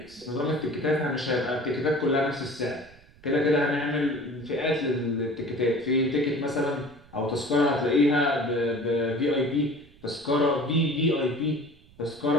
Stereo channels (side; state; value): right; noise; rumble, 26 dB below the sound